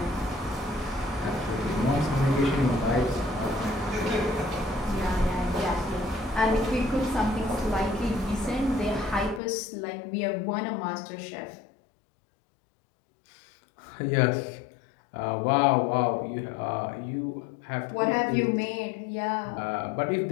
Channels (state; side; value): drops out; right; at 9.4 s